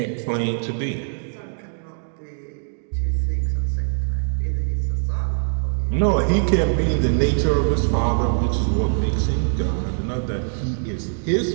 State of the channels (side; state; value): left; silent; digital silence